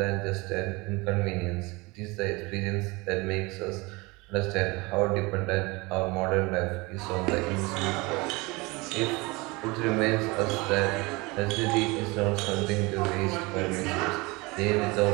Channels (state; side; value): quieter; left; 24.7 dB